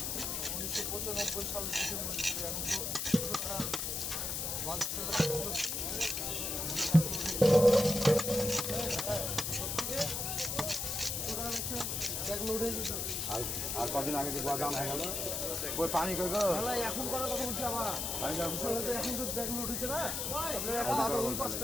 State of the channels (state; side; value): noise; left; hiss, 2 dB below the sound